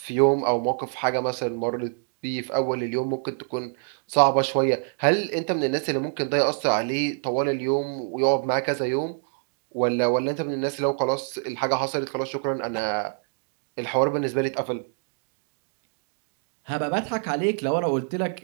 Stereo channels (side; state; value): left; silent; 61 dB below the other